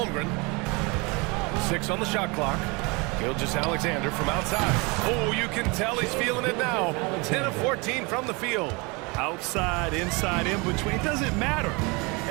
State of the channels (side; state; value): left; quieter; 28.0 dB